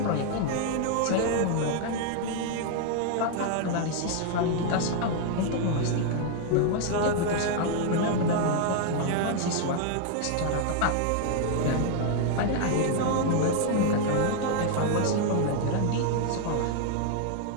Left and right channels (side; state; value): both; different; correlation 0.00